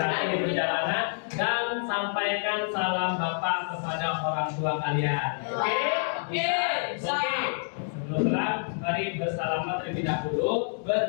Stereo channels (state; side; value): silent; right; digital silence